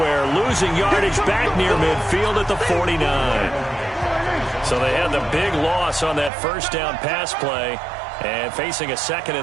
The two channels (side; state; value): left; drops out; at 6.3 s